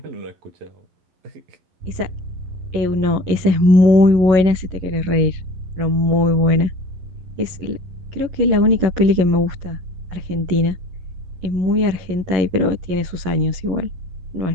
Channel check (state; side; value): late; left; 11 ms